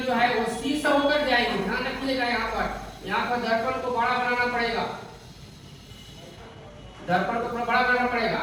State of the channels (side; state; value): both; identical; correlation 1.00